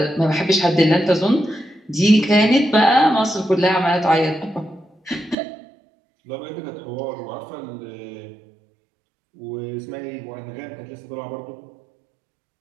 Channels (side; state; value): left; drops out; at 5.4 s